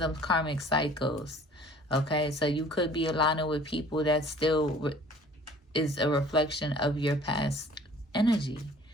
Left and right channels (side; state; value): both; normal; correlation 0.51